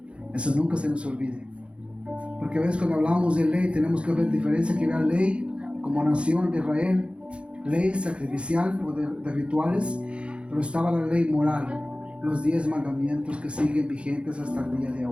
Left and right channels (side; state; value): left; late; 0.059 ms